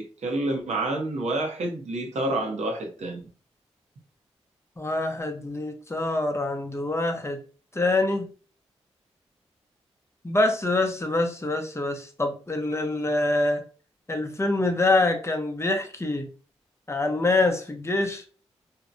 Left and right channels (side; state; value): both; normal; correlation 0.72